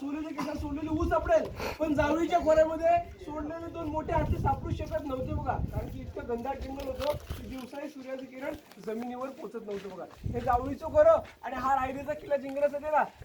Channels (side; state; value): both; identical; correlation 1.00